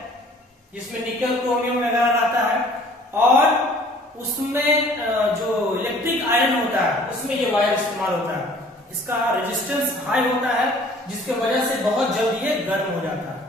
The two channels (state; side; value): normal; both; correlation 0.53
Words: जिसमें निकल क्रोमियम वगैरह रहता है, और उसमें जो इलेक्ट्रिक आयरन होता है उसमें ये वायर इस्तेमाल होता है. इसका रेजिस्टेंस हाई होता है जिसके वजह से बहुत जल्दी ये गर्म हो जाता है.